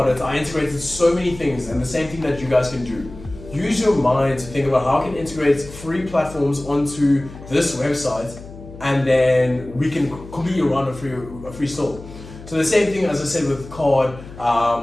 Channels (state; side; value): noise; left; hum, 16 dB below the sound